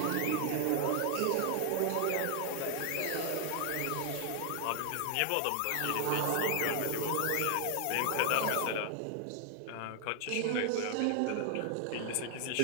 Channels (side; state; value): both; different; correlation 0.00